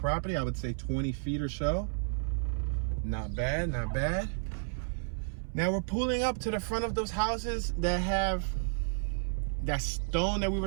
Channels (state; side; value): silent; left; 57 dB below the other